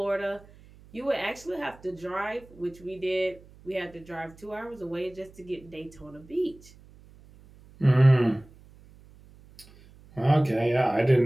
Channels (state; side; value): noise; right; hum, 24 dB below the sound